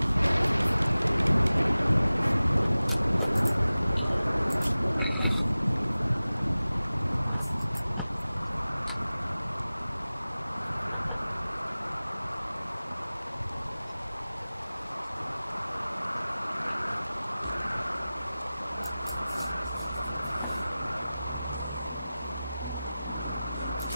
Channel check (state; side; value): inverted; both; correlation -0.97